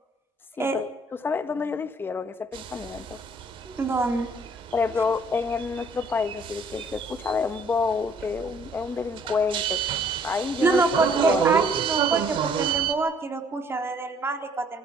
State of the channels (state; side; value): normal; both; correlation 0.60